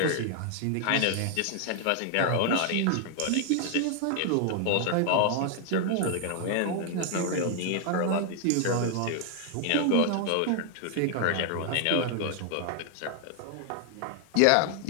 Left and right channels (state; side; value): different; both; correlation 0.00